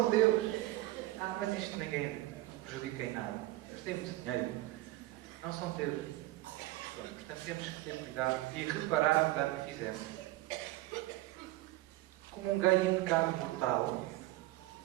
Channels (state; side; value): quieter; left; 17.9 dB